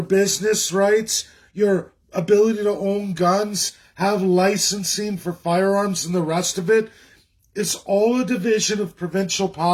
business rights, your ability to own guns, have licensing for firearms, and the rest of it is all a division of provincial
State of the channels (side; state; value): both; identical; correlation 1.00